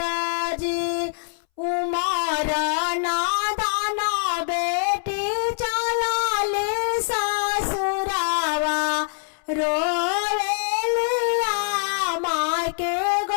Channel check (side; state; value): right; silent; 63 dB below the other